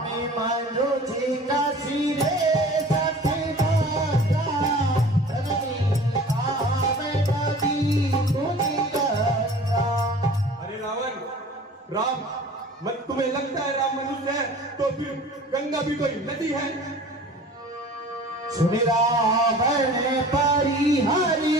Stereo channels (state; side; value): normal; both; correlation 0.44